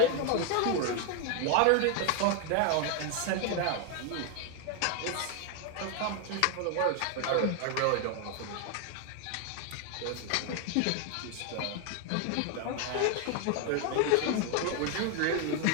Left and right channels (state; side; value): different; both; correlation 0.01